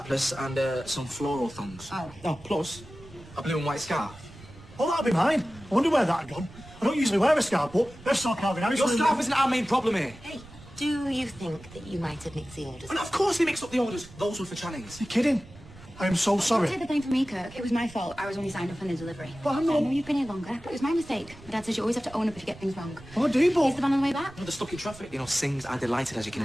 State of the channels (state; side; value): noise; right; rumble, 20 dB below the sound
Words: and some floral thongs. Oh. Plus a blue and white scarf. Oh, that'll be mine. I wonder where that had gone. I don't usually wear a scarf, but they're so carving out. Your scarf isn't our main problem here. Hey, do you think that you might have mixed the orders? And of course we mixed up the orders. Those were for Channings. You're kidding? I am so sorry. Don't take the blame for me, Kirk. It was my fault. I was only signed up on the delivery. But I'm not- I know you've been here longer, but it was my mistake. My dad says you always have to own up if you get things wrong. Oh, do you, Is but... the van on the way back? No, they're stuck in traffic. You know, Sings are delighted, as you can